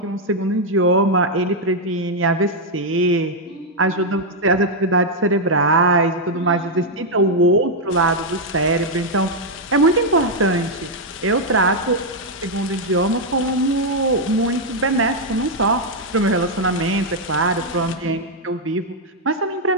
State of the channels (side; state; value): both; normal; correlation -0.01